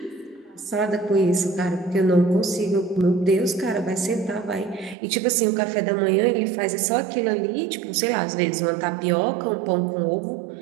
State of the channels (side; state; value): left; drops out; at 5.0 s